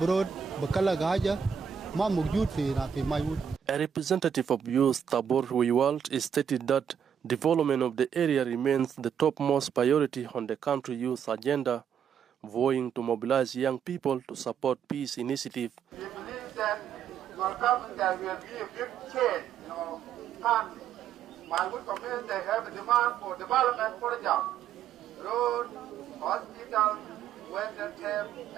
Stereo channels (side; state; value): left; quieter; 8.0 dB